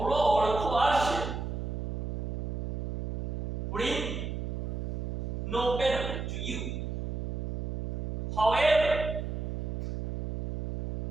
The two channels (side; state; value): right; noise; hum, 2 dB below the sound